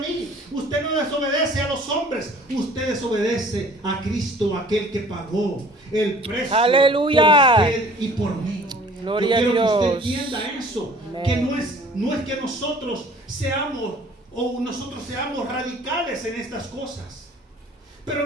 Usted no desobedece a los hombres. Usted desobedece a Cristo, aquel que pagó el precio. Aleluya. Por usted y por mí. Gloria Yo quiero a que Dios. usted entienda eso. Amén. Que no es que nosotros seamos radicales en estas cosas.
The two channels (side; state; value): both; normal; correlation 0.51